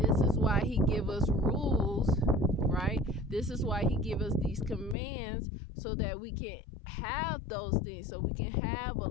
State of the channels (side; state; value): right; drops out; at 5.0 s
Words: this is why he gives us rules, right? This is why he gives us these commands, so that we can have those things, so we can have a